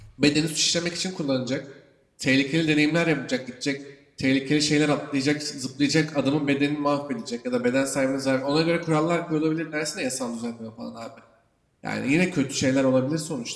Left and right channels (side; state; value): both; identical; correlation 1.00